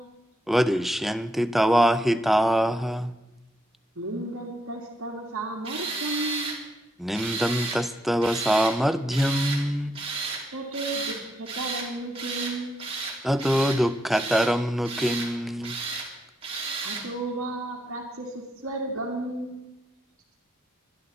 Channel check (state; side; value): normal; both; correlation 0.79